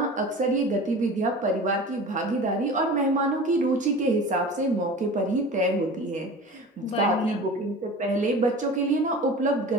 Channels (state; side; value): normal; both; correlation 0.37